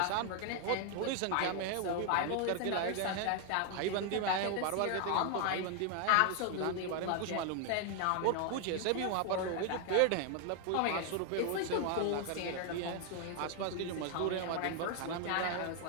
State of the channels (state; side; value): different; both; correlation 0.00